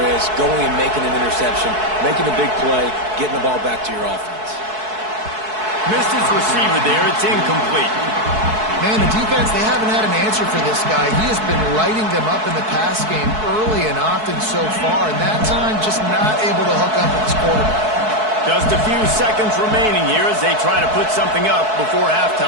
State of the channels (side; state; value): left; late; 4.6 ms